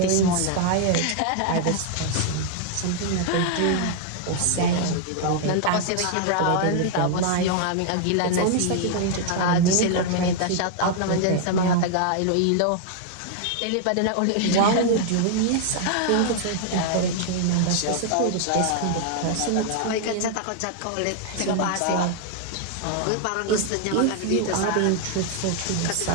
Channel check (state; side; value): different; both; correlation 0.00